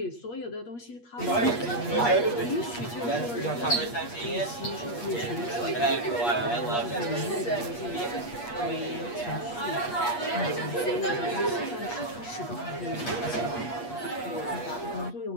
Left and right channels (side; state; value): right; late; 8.4 ms